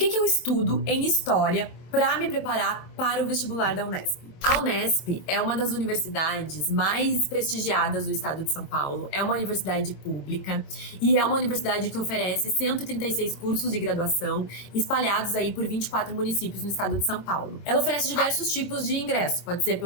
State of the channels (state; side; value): late; right; 22 ms